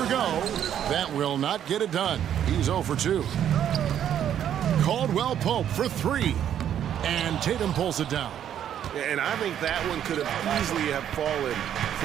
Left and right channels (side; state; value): left; quieter; 10.0 dB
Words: go. That will not get it done. He's 0 for 2. Caldwell Pope for 3. And Tatum pulls it down. And I think that one could have easily have fallen